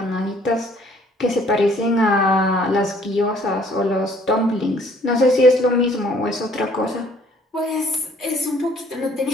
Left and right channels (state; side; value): normal; both; correlation 0.60